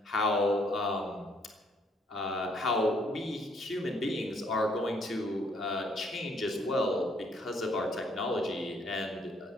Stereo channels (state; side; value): normal; both; correlation 0.67